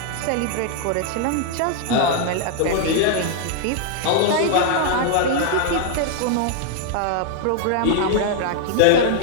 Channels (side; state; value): both; different; correlation 0.00